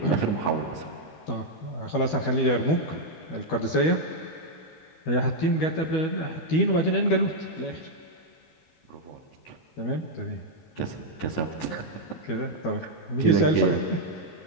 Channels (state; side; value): late; right; 12 ms